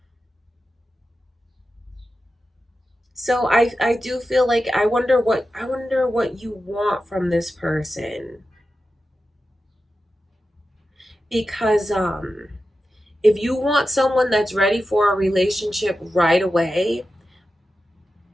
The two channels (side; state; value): both; normal; correlation 0.92